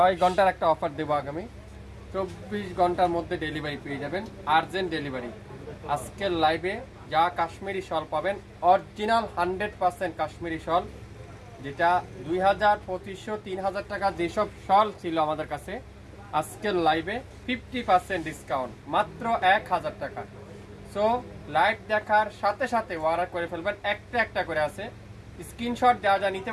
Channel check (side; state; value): both; identical; correlation 1.00